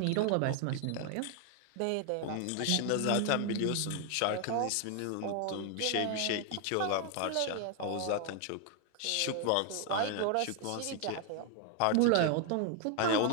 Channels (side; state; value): both; different; correlation 0.00